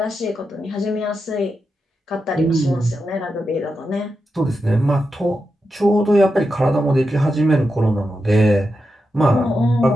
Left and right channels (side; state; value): both; normal; correlation 0.88